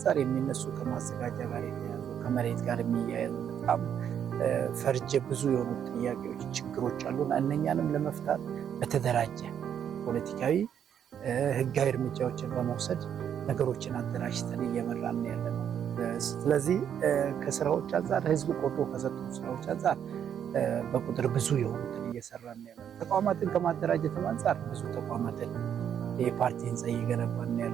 የሚነሱ ከማዘጋጃ ጋር የተያዙ ከመሬት ጋር የሚያያዙ በጣም ፈርጀ ብዙ የሆኑ ጥያቄዎች፣ ችግሮች አሉና እነኛንም ለመፍታት በተደራጀ ፖለቲካዊ ህጋዊ እርምጃዎችን በመውሰድ ነገሮችን አደራጅተን እየመራን ያለ ነው። ስለዚህ ከስራዎች አንጻር ህዝብ ቆጥሮ ከሰጡ ስራዎች አንጻር በቁጥር ብዙ የሆኑትን እየሰራን ያለ ነው። ተቋማትን ከማደራጀትም አንጻር ብዙ ተቋማትን የፓርቲ ህንፃ እየገነባን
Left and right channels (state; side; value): quieter; left; 8.9 dB